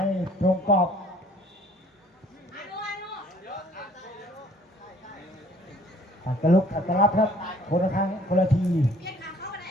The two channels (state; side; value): normal; both; correlation 0.57